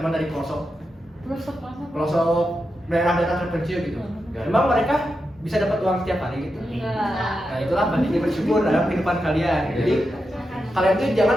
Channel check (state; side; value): normal; both; correlation 0.88